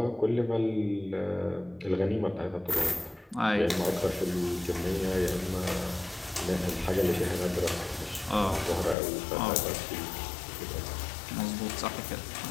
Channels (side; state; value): right; drops out; at 9.0 s